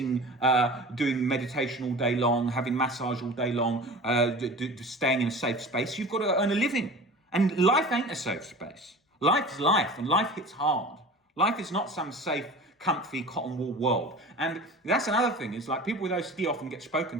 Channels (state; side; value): normal; both; correlation 0.38